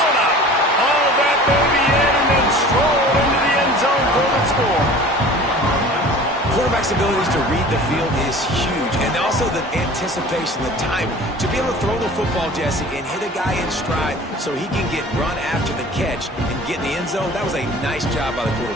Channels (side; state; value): both; normal; correlation 0.43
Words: quarterback's abilities to read the field is huge, and also the anticipation, the timing. To be able to throw the football, Jesse, and hit a guy in stride so he can get run after the catch and get in the end zone, that was a nice job by the